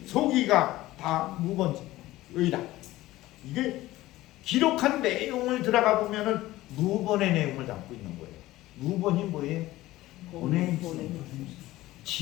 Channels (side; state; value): right; quieter; 16.9 dB